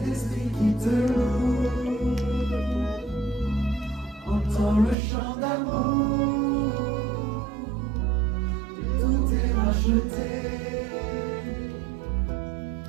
l'esprit qui te loue. Entends le chant d'amour, tout est racheté.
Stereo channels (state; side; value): drops out; left; at 5.0 s